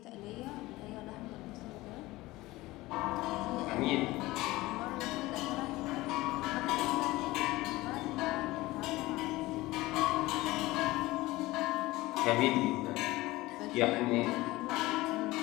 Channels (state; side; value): quieter; right; 19.2 dB